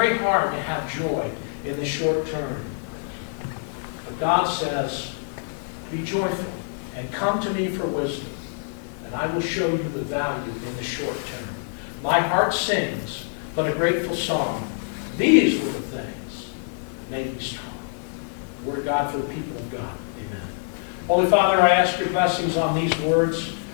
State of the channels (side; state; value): right; silent; digital silence